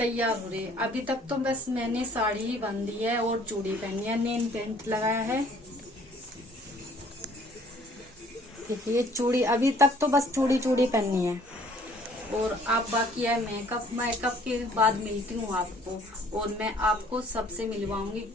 हो रहे। अभी तक तो बस मैंने साड़ी ही बांधी है और चूड़ी पहनी है, नेल पेंट लगाया है। देखिए चूड़ी, अभी तक तो बस चूड़ी पहननी है। और आप बाकी है मेकअप। मेकअप के बाद मिलती हूँ आपको और मैं आपको सबसे मिलवाऊंगी,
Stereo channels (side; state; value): both; normal; correlation 0.58